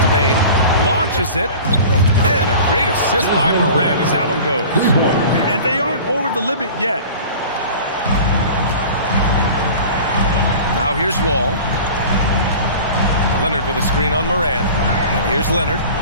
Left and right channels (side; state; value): both; inverted; correlation -0.40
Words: Bain. Launches it. And a great assist by Morant as that one goes. And they aren't over the limit yet. Now here's Wall. Leonard with a screen on Morant. And here's Leonard,